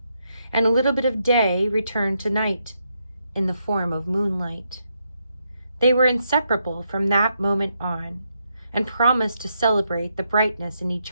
and a little bit of Day returned to Night in the form of moonlight. They were inseparable from that moment on, and promised to celebrate the brightness in each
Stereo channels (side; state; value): both; inverted; correlation -0.80